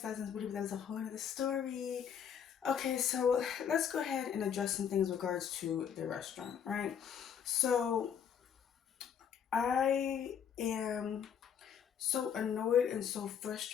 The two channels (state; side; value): quieter; right; 8.1 dB